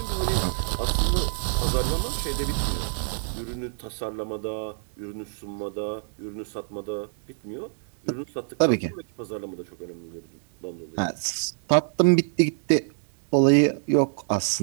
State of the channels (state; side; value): silent; left; digital silence